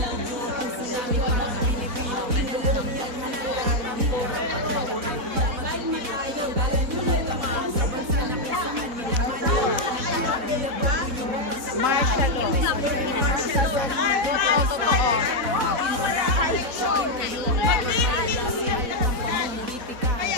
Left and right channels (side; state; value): left; late; 4.1 ms